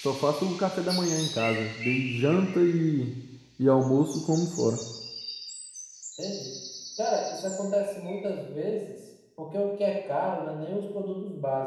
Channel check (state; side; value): identical; both; correlation 1.00